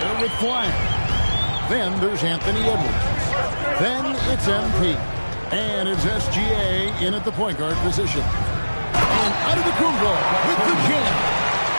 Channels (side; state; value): both; inverted; correlation -1.00